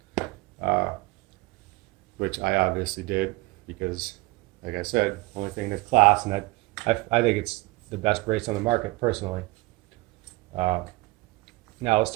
which I obviously did because, like I said, only thing in this class, and I think it's the best brace on the market personally. Now let's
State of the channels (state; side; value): quieter; left; 22.9 dB